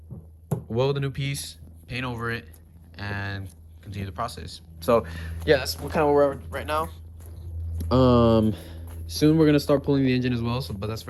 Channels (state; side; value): identical; both; correlation 1.00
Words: weld a new piece, paint over it, and continue the process. So yeah, that's kind of where we're at right now. Soon we're gonna start pulling the engine as well. So, but that's for